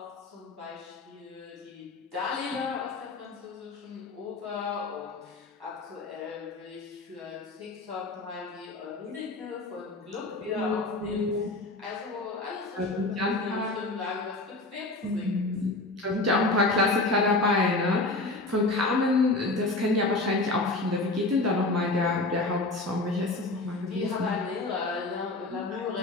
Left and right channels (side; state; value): right; quieter; 3.0 dB